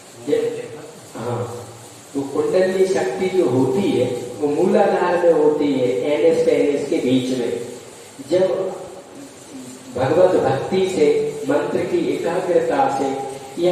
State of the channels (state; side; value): identical; both; correlation 1.00